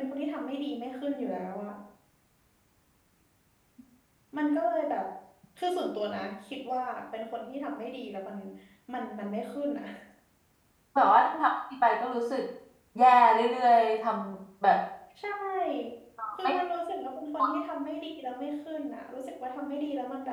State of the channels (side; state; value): both; identical; correlation 1.00